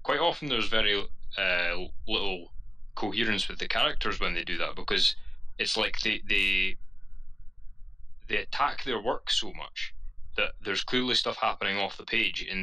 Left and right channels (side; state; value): both; normal; correlation 0.95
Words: quite often there's very little coherence with the characters when they do that, because it's like they attack their work so much that there's clearly stuff happening off the page in